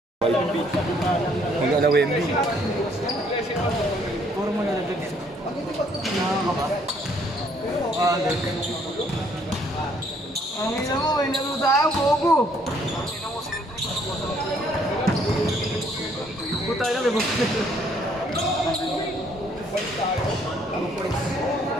Mag-ala Wemby. Puro mo na nagdag. Nakaka ba? Ang ina mo, may laro tayo, bobo! Puta na, may bobo.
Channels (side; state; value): both; normal; correlation 0.65